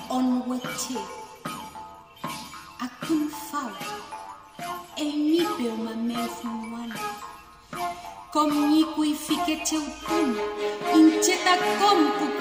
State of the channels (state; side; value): identical; both; correlation 1.00